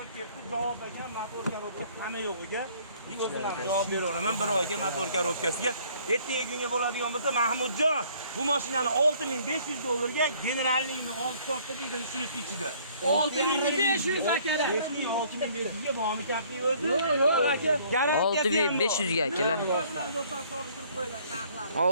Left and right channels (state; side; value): inverted; both; correlation -0.59